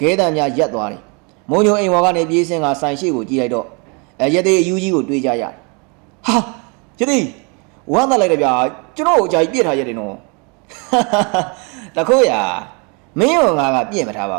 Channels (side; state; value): left; quieter; 32.7 dB